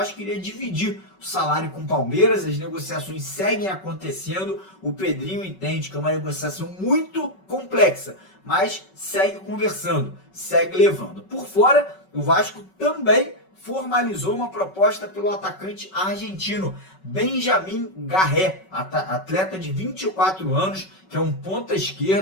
queria dividir o salário com o Palmeiras, as negociações seguem acontecendo, o Pedrinho entende que é uma negociação muito complexa, mas segue conversando, segue levando. Por fora, o Vasco também formalizou uma proposta pelo atacante argentino Benjamin Garré, atleta de 24 anos, que é um ponta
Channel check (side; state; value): right; late; 5.3 ms